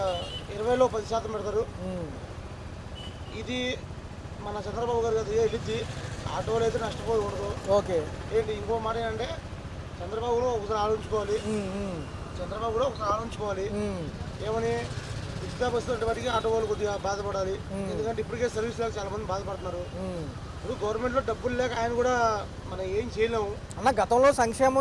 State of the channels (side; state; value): both; identical; correlation 1.00